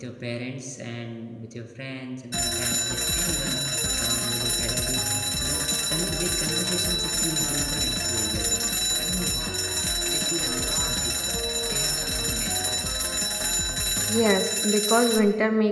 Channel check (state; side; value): identical; both; correlation 1.00